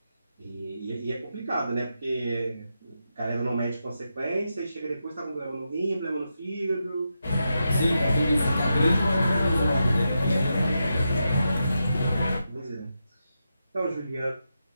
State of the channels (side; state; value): both; inverted; correlation -0.87